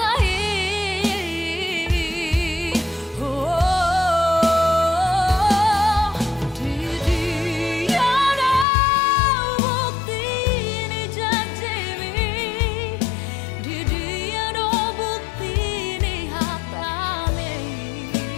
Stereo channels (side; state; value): right; drops out; at 8.7 s